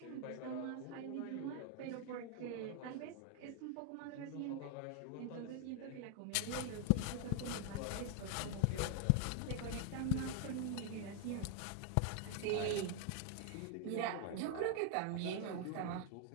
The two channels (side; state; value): both; different; correlation 0.00